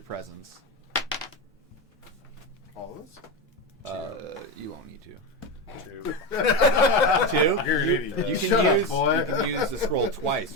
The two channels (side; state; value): both; normal; correlation 0.15